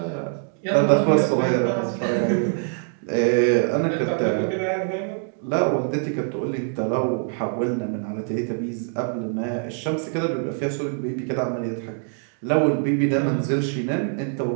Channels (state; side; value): silent; left; 56 dB below the other